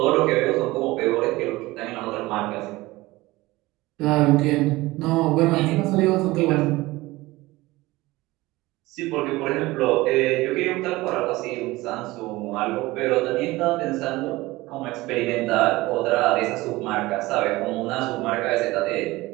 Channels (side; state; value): left; quieter; 19.7 dB